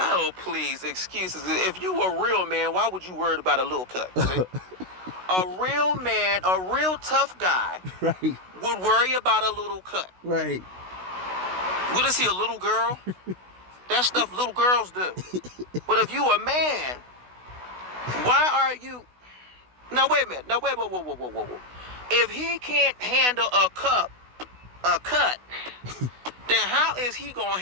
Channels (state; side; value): late; left; 16 ms